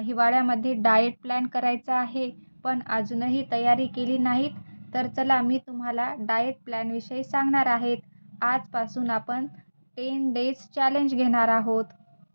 हिवाळ्यामध्ये डाएट प्लॅन करायचा आहे, पण अजूनही तयारी केली नाहीत. तर चला मी तुम्हाला डाएट प्लॅनविषयी सांगणार आहेत. आजपासून आपण 10 डेज चॅलेंज घेणार आहोत.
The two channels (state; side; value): inverted; both; correlation -1.00